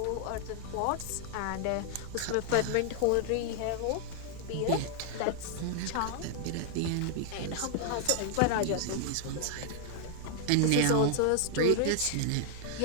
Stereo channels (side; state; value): both; different; correlation 0.00